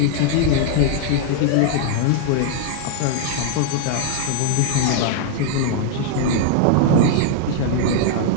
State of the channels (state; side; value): different; both; correlation -0.01